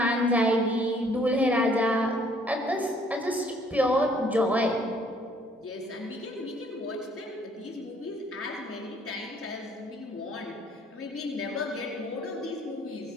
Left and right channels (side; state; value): both; normal; correlation 0.61